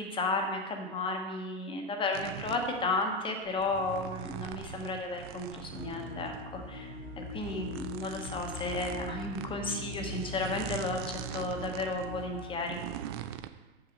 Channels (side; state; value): both; normal; correlation 0.16